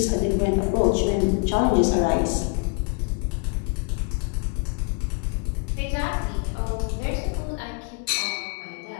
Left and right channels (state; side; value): quieter; right; 36.3 dB